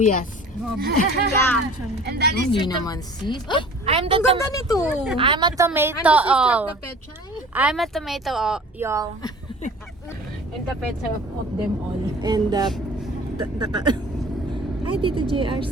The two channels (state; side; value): normal; both; correlation 0.45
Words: Yeah. And that is Hindi naman sis. I'm Ang ganda nito. I'm a And tomato. this is like the Petchay, I'm a tomato, y'all. and the Petchay of them all. And Hi, Tito JR